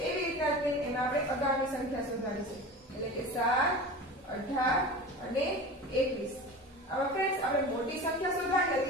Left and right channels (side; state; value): both; normal; correlation 0.33